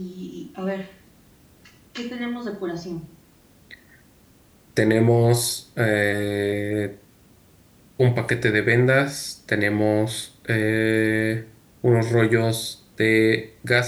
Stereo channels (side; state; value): both; identical; correlation 1.00